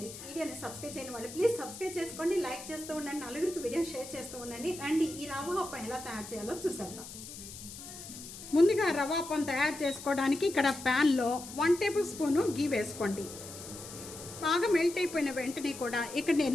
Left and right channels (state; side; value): noise; left; hiss, 13 dB below the sound